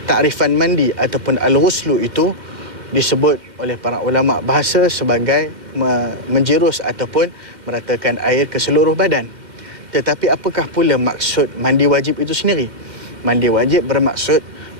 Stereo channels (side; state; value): left; late; 2.1 ms